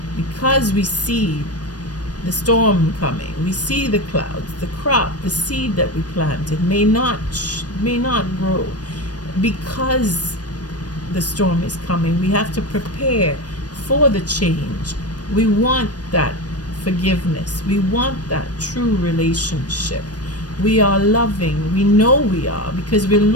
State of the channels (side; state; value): right; late; 0.69 ms